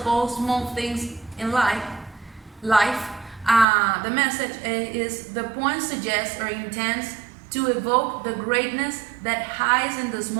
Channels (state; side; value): drops out; left; at 3.7 s